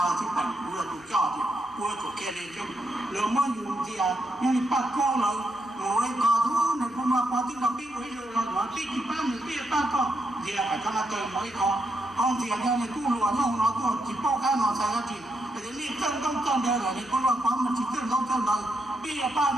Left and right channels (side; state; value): both; normal; correlation 0.80